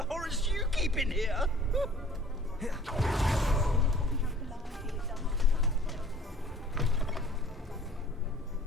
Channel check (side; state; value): both; normal; correlation 0.51